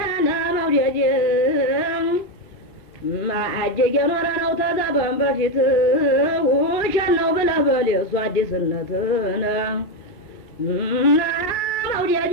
መውደድ ማአጀገ ኖረ ነው ተዘበን በፊት ውሸት ነው ብለህ በል የእሱ አዲስነትን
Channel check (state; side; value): late; right; 2.2 ms